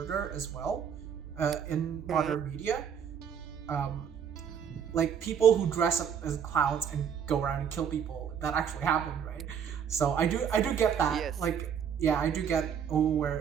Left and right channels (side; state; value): left; quieter; 7.9 dB